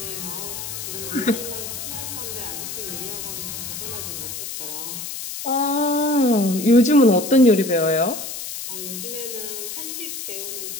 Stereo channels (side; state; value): left; noise; hiss, 7 dB below the sound